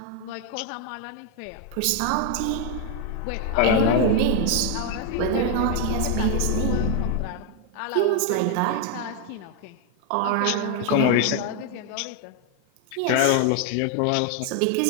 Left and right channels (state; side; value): different; both; correlation 0.01